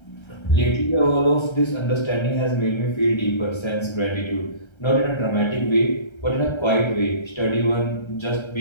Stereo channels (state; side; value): late; right; 1.3 ms